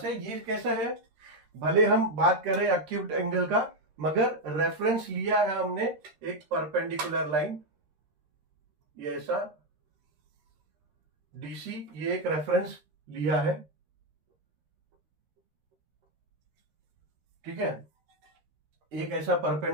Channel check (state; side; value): late; left; 13 ms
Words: ये कैसा है, भले हम बात कर रहे हैं अक्यूट एंगल का, मगर रेफरेंस लिया है हमने एक परपेंडिकुलर लाइन, ये ऐसा DC, ये एक रेफरेंस लिया है, ठीक है। एक ऐसा